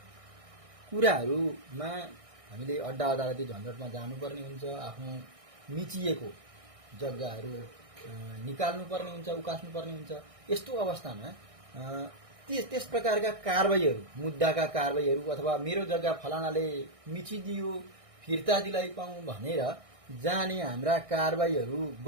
कुराहरूमा हामीले अड्डा अदालती झन्झटमा जानुपर्ने हुन्छ। आफ्नो मिचिएको जग्गाहरू निकाल्नुपर्ने हुन्छ, उकास्नुपर्ने हुन्छ। यस्तो अवस्थामा त्यस प्रकारका कारबाहीहरू, मुद्दाका कारबाहीहरू अथवा मेरो जग्गा फलानाले मिचिदियो फिर्ता दिलाइ पाऊँ भनेर जाने हाम्रा कारबाहीहरू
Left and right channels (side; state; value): left; late; 1.6 ms